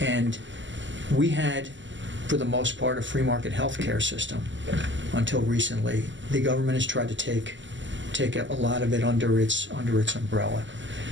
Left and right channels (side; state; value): left; late; 0.54 ms